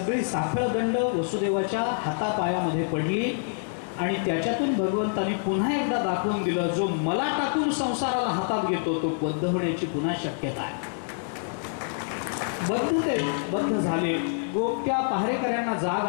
साखळदंड वसुदेवाच्या हातापायामध्ये पडली आणि त्याच्यातून भगवंतांनी पुन्हा एकदा दाखवून दिलं, जो मला टाकून संसाराला हातात घेतो तो बद्ध होण्याची पुन्हा शक्यता आहे. बद्ध झाले. गोप्या पहारेकऱ्यांना जाग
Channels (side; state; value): right; silent; digital silence